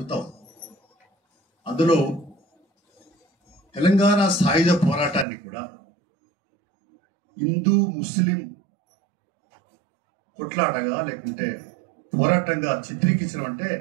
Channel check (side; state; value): left; drops out; at 5.2 s